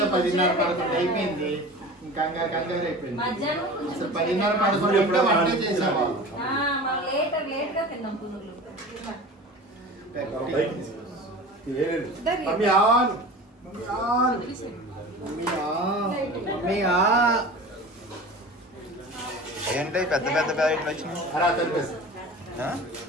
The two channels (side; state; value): both; normal; correlation 0.37